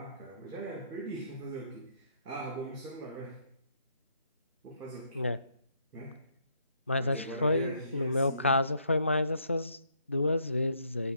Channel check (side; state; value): both; inverted; correlation -0.70